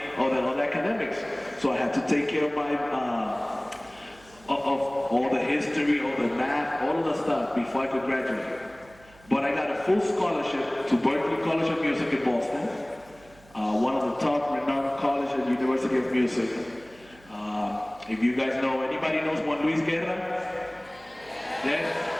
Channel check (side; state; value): right; noise; hum, 26 dB below the sound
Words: of the academics. So I had to take care of my, of all the history, all the math, all of the stuff before I could graduate. But I got a full scholarship to Berklee College of Music in Boston, one of the top renowned colleges at University of Music. If you guys know, anybody knows Juan Luis Guerra? Yeah?